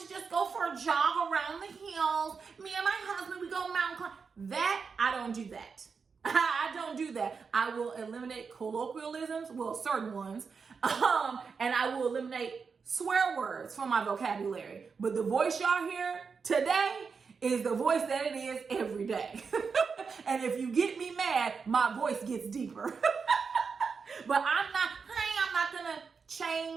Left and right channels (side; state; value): left; quieter; 5.4 dB